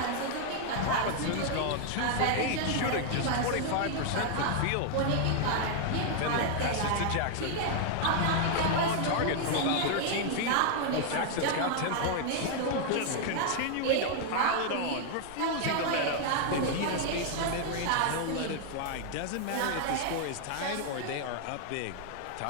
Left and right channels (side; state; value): both; different; correlation 0.00